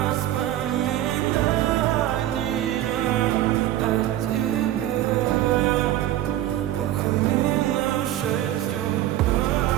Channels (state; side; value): quieter; left; 13.4 dB